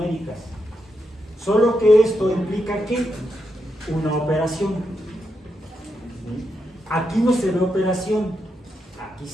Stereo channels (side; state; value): both; normal; correlation 0.84